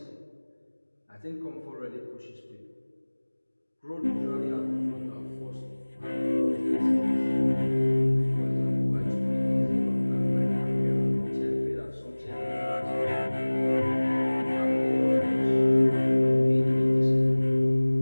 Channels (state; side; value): inverted; both; correlation -1.00